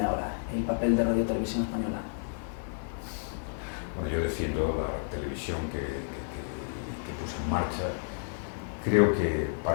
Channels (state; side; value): silent; right; digital silence